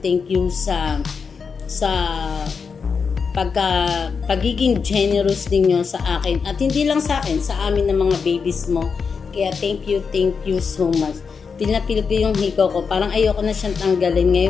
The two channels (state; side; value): quieter; right; 5.6 dB